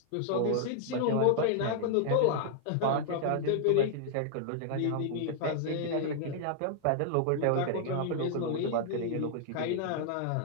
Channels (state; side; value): different; both; correlation -0.01